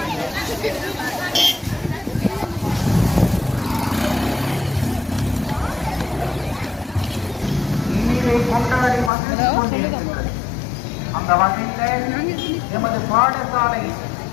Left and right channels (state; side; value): drops out; right; at 9.1 s